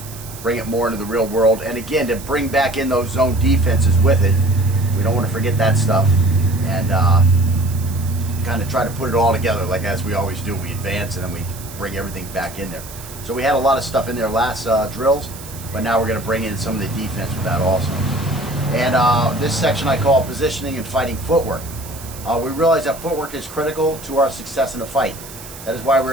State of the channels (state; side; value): noise; right; hiss, 15 dB below the sound